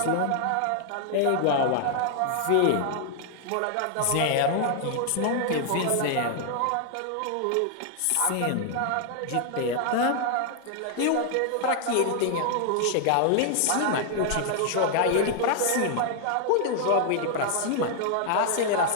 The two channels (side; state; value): both; different; correlation 0.00